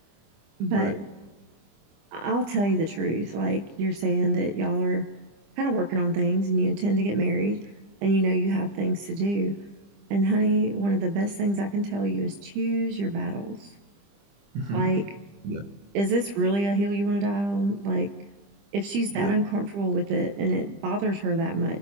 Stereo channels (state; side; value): late; left; 25 ms